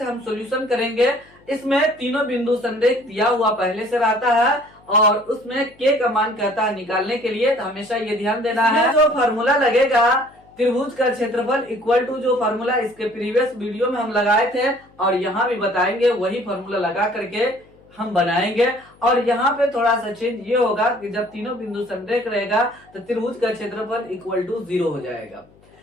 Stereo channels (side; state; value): left; noise; hum, 29 dB below the sound